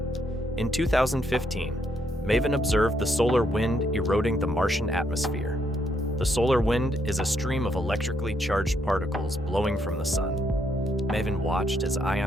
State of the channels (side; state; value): both; normal; correlation 0.75